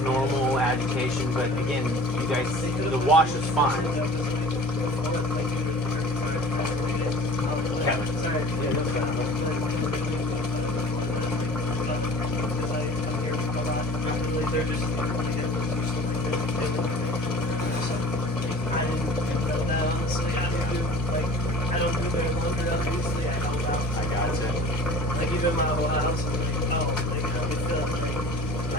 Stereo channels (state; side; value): normal; both; correlation 0.44